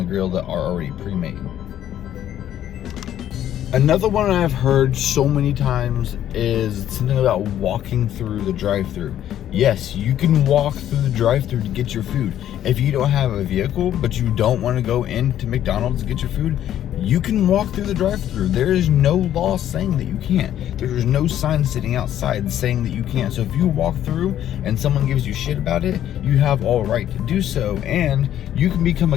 grill that are already pre-made. Another one I've heard so many times is something about walking through the drive-thru. Yes, you can walk through the drive-thru to get your food. If you don't have a vehicle, but you don't want to go into McDonald's to get your food, you can walk through the drive-thru. There is no law saying that you can't. There is no sign sitting outside saying that you can't. So if you walk through and someone gives you shit about it, you have all right to do so. And you can become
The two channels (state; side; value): quieter; right; 11.3 dB